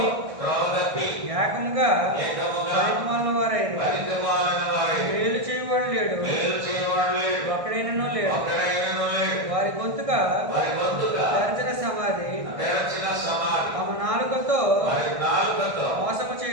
త్రోవ తప్పి ఏకముగా పనికిమాలిన వారైరి. మేలు చేయవాడు లేడు, ఒక్కడైనను లేడు. వారి గొంతుక తెరచిన సమాధి. తమ నాలుకతో మోసము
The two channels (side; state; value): left; late; 1.6 ms